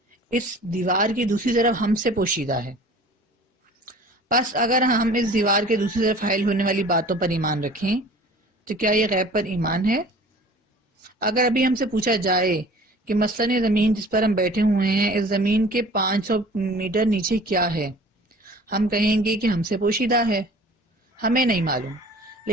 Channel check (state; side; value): normal; both; correlation 0.46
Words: اس دیوار کی دوسری طرف ہم سے پوشیدہ ہے۔ بس اگر ہم اس دیوار کے دوسری طرف حائل ہونے والی باتوں پر ایمان رکھیں تو کیا یہ غیب پر ایمان ہے؟ اگر ابھی ہم سے پوچھا جائے کہ مثلاً یہ زمین جس پر ہم بیٹھے ہوئے ہیں، اس زمین کے 500 میٹر نیچے کیا ہے، ہم کہیں گے کہ ہم سے پوشیدہ ہے، ہمیں نہیں معلوم۔